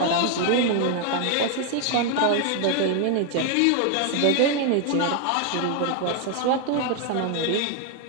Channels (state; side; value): different; both; correlation 0.01